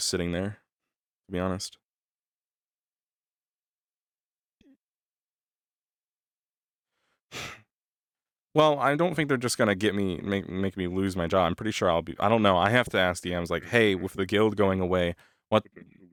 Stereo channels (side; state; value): both; identical; correlation 1.00